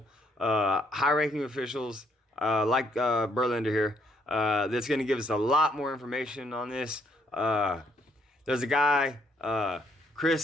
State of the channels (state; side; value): normal; both; correlation 0.71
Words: high-ranking officials, like Berlander here, that's going to give us a lot more information on this. There's a guy,